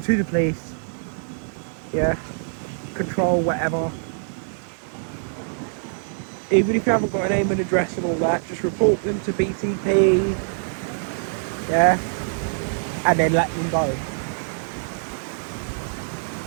to the police, yeah? Control, whatever. Even if you haven't got a name and address and all that, just report them to BTP, yeah, and then let them go.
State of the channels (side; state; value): left; silent; digital silence